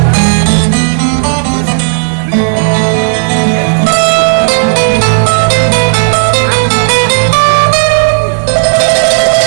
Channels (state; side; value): silent; left; digital silence